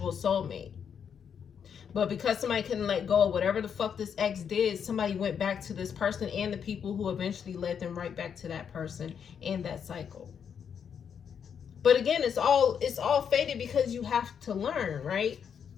soulmate. But because somebody couldn't let go of whatever the fuck this ex did, somebody went back to this person and the people who eventually led them right back to that person and that cycle. But again, it's all fated because you have to learn, right?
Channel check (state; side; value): quieter; right; 7.5 dB